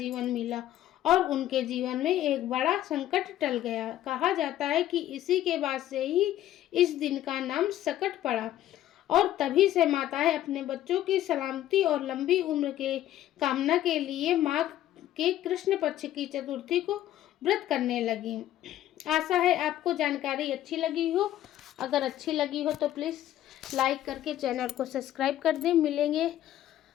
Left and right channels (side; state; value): right; quieter; 12.9 dB